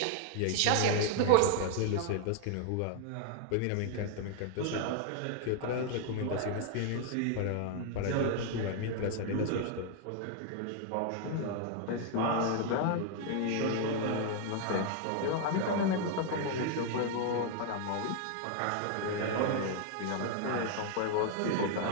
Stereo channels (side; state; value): both; different; correlation 0.00